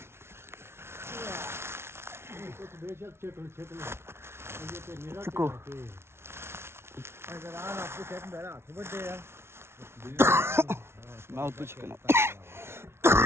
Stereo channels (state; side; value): late; left; 0.12 ms